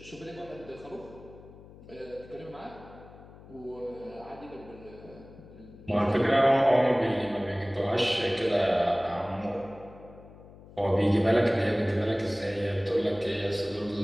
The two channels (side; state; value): left; noise; hum, 20 dB below the sound